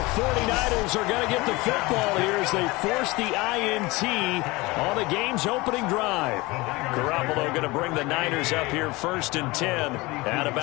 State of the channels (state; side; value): quieter; right; 22.6 dB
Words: 49ers are going to get the football here as they force the INT on the game's opening drive. Garoppolo going to bring the Niners up here 1st and 10 at